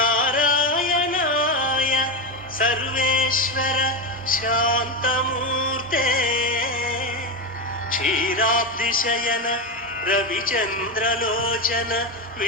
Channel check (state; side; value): normal; both; correlation 0.14